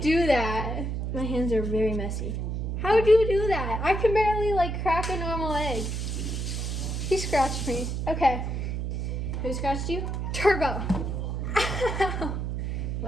do that? My hands are very messy. How do you do that? I can barely like crack a normal egg. He scratched me. Okay. Who scratched you? Turbo.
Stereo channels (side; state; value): right; noise; hum, 2 dB below the sound